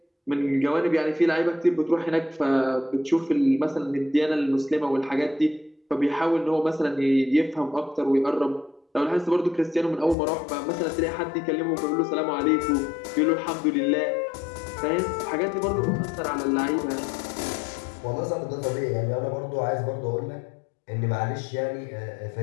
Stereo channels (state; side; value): drops out; right; at 10.2 s